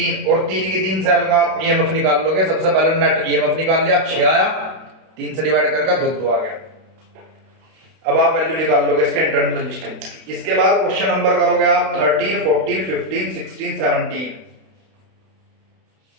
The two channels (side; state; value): left; late; 32 ms